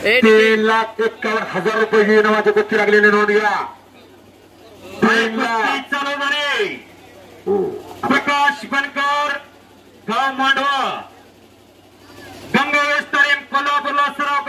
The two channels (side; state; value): both; identical; correlation 1.00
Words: 3,51,000 रुपये इनामाची कुस्ती लागलेली नोंद घ्या. चालवणारे प्रकाश बनकर गाव मांडवा गंगावेश तालीम कोल्हापूरला सराव